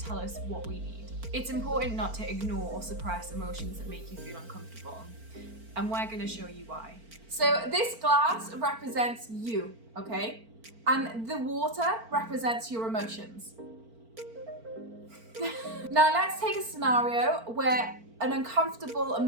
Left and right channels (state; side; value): late; left; 4.4 ms